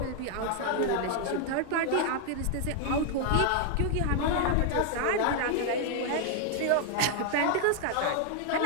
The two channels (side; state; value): both; different; correlation 0.00